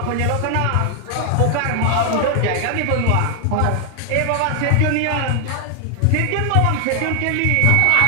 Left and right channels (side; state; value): both; different; correlation 0.00